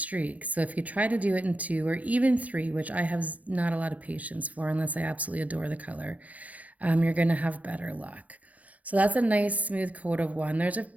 So if you try to do it in 2 or even 3, which I have not a lot of patience for unless I absolutely adore the color, you're going to have better luck. So that's a nice smooth coat of 1.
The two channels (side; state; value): left; late; 0.069 ms